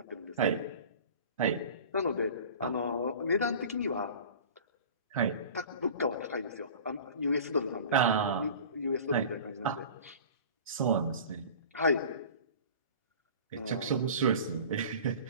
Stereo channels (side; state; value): both; inverted; correlation -0.40